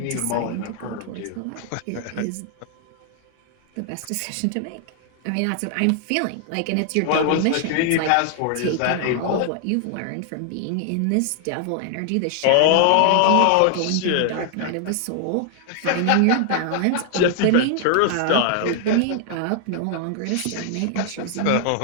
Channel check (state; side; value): different; both; correlation 0.00